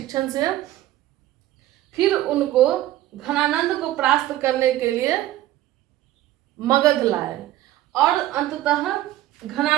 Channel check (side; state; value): left; quieter; 14.5 dB